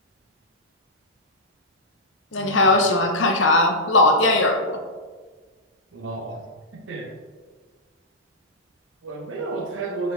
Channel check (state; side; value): normal; both; correlation -0.13